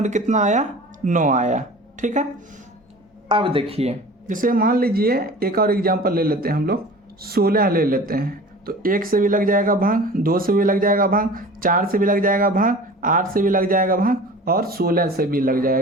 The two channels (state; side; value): normal; both; correlation 0.41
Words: कितना आया? 9 आया। ठीक है, अब देखिए, जैसे मान लीजिए एक और एग्जांपल ले लेते हैं हम लोग, 16 ले लेते हैं। तो 1 से भी लग जाएगा भाग, 2 से भी लग जाएगा भाग, 4 से भी लग जाएगा भाग, 8 से भी लग जाएगा भाग, और 16 से भी लग